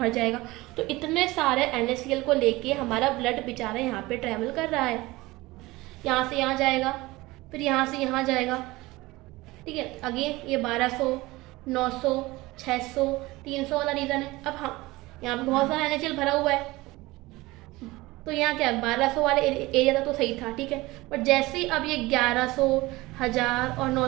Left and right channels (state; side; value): quieter; left; 20.4 dB